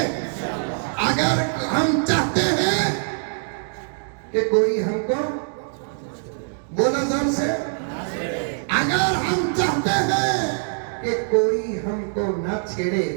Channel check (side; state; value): left; silent; digital silence